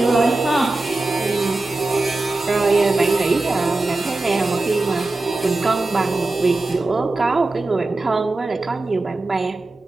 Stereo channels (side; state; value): left; quieter; 3.1 dB